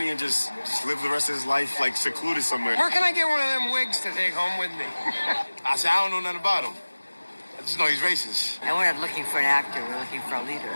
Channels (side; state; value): both; inverted; correlation -1.00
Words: and just live the rest of his life, like, secluded somewhere. Where can I get one of them wigs to take home with me? I said, I don't know nothing about him. I just know he's racist. And we're not looking for an actor, we're looking for a leader.